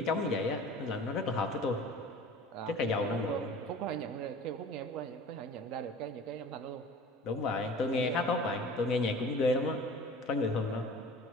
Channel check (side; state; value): both; normal; correlation 0.42